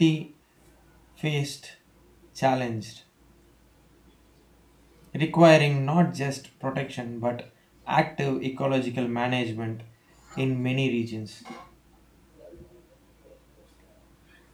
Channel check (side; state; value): both; identical; correlation 1.00